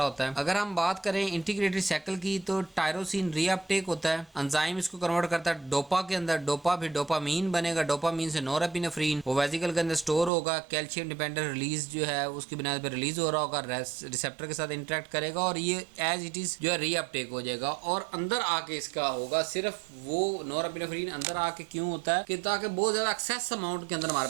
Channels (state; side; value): drops out; left; at 10.3 s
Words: होता है। अगर हम बात करें इंटीग्रेटेड साइकिल की तो टायरोसिन रीअपटेक होता है, एंजाइम इसको कन्वर्ट करता है डोपा के अंदर, डोपा फिर डोपामीन बनेगा, डोपामीन से नॉरएपिनेफ्रिन वो वेसिकल के अंदर स्टोर होगा, कैल्शियम डिपेंडेंट रिलीज जो है उसकी बुनियाद पर रिलीज हो रहा होगा, रिसेप्टर के साथ इंटरेक्ट करेगा और ये एज इट इज जो है रीअपटेक हो जाएगा और अंदर आके इसका होगा। सिर्फ वो नॉरएपिनेफ्रिन अंदर आके क्यों होता है कि ताकि बहुत ज्यादा एक्सेस अमाउंट के अंदर